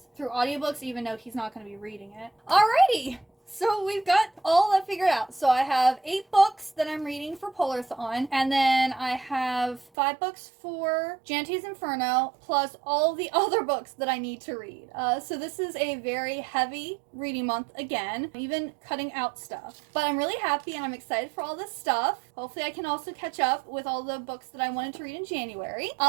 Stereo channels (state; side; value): drops out; left; at 9.9 s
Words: through audiobooks, even though he's not going to be reading it. Alrighty! So we've got all that figured out. So I have 8 books that I'm reading for Polarthon, and then I have 5 books for Jante's Inferno, plus all the other books that I need to read. So this is a very heavy reading month again, even cutting out stuff. But I'm really happy and I'm excited for all this stuff. Hopefully I can also catch up with all the books that I wanted to read in January.